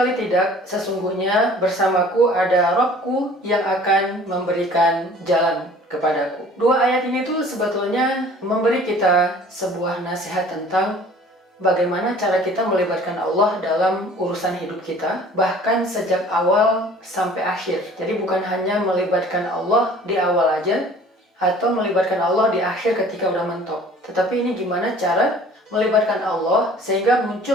tidak, sesungguhnya bersamaku ada Rabbku yang akan memberikan jalan kepadaku." Dua ayat ini tuh sebetulnya memberi kita sebuah nasihat tentang bagaimana cara kita melibatkan Allah dalam urusan hidup kita, bahkan sejak awal sampai akhir. Jadi bukan hanya melibatkan Allah di awal aja, atau melibatkan Allah di akhir ketika udah mentok. Tetapi ini gimana cara melibatkan Allah sehingga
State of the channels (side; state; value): both; normal; correlation 0.50